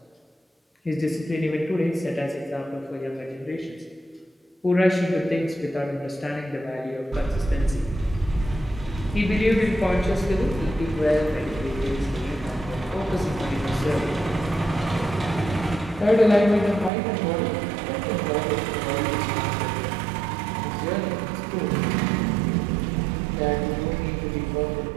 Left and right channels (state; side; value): drops out; left; at 16.9 s